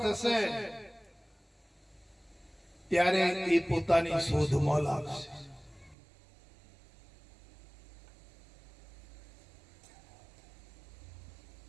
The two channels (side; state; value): left; drops out; at 6.0 s